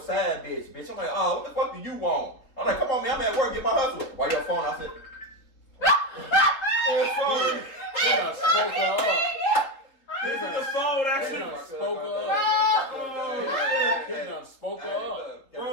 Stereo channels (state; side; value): late; right; 3.9 ms